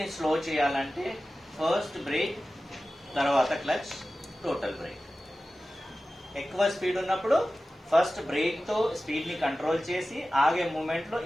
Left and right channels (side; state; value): both; normal; correlation 0.95